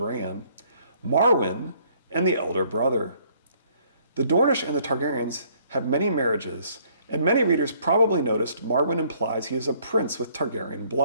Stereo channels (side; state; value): both; inverted; correlation -0.63